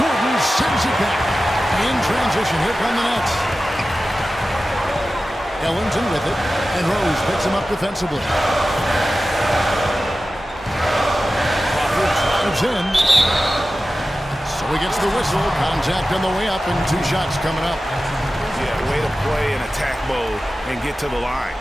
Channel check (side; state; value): both; normal; correlation 0.95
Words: sends it back. In transition, here come the Nets. Ellington with it, and Rose picks him up defensively. Crawford drives in. So he gets the whistle. Contact on the way up, and 2 shots coming up. Yeah, way to play in attack mode and get to the line.